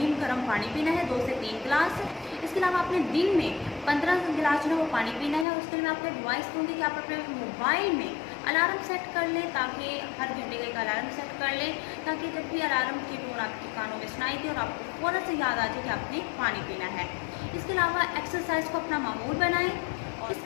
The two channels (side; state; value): right; drops out; at 5.5 s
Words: गर्म पानी पीना है 2 से 3 गिलास। इसके अलावा आपने दिन में 15 गिलास जो है वो पानी पीना है। उसके लिए मैं आपको एडवाइस दूँगी कि आप अपने मोबाइल में अलार्म सेट कर लें, ताकि हर घंटे का एक अलार्म सेट कर लें, ताकि जब भी अलार्म की टोन आपके कानों में सुनाई दे और आपको फ़ौरन से याद आ जाए कि आपने पानी पीना है। इसके अलावा एक्सरसाइज को अपना मामूल बनाएं। और